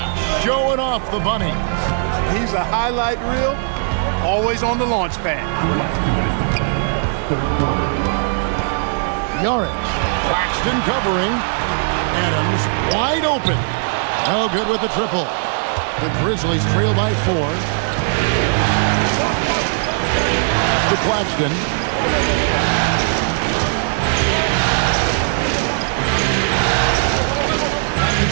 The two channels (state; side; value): silent; left; digital silence